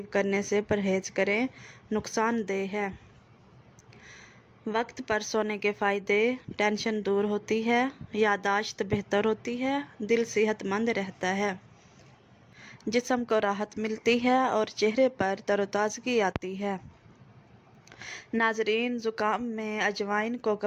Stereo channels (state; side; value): identical; both; correlation 1.00